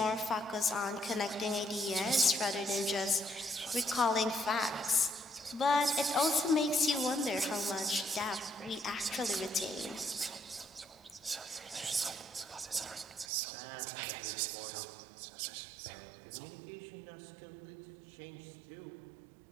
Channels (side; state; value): left; drops out; at 13.2 s